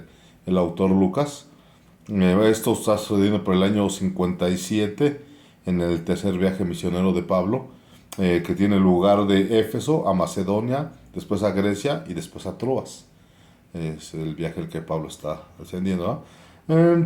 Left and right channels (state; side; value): identical; both; correlation 1.00